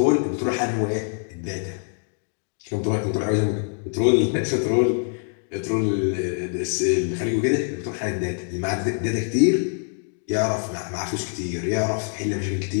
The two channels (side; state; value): right; silent; 62 dB below the other